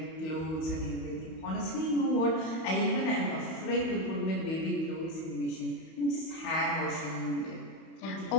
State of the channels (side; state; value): right; late; 31 ms